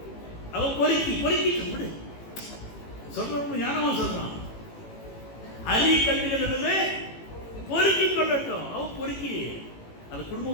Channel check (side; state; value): right; late; 18 ms